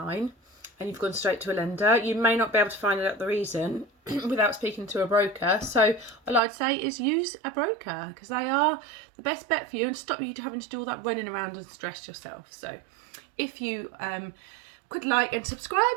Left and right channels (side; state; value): left; drops out; at 6.4 s